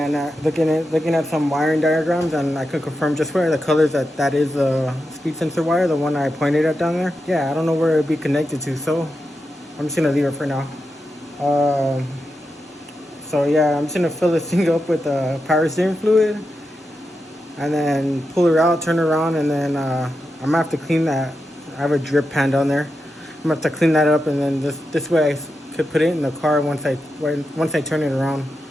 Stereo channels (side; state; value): both; normal; correlation 0.88